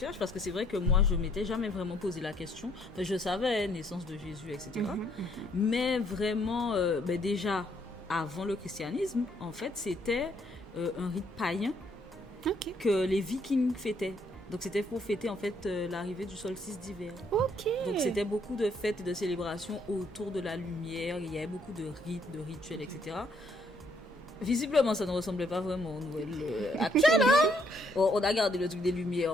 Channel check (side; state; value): both; normal; correlation 0.68